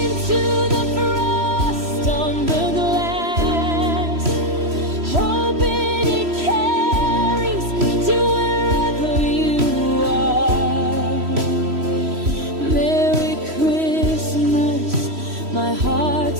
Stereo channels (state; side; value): late; left; 3.1 ms